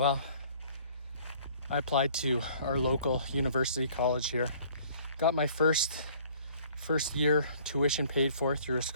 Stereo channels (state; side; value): inverted; both; correlation -0.55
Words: I applied to our local university college here, got my first year tuition paid for through a